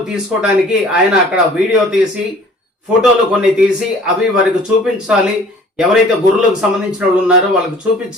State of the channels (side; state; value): both; normal; correlation 0.51